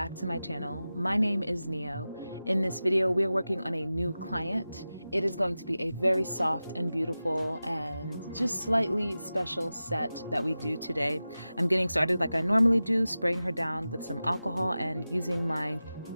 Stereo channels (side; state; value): both; inverted; correlation -0.95